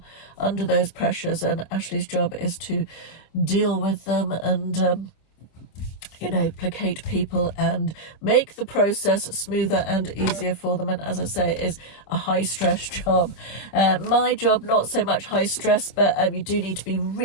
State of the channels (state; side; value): late; right; 26 ms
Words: under those pressures, and Ashley's job is to deal with them and you know, placate people and make the process smoother and easier for them. And as I say, it is a high stress job. My job, not so much high stress, but you do need to be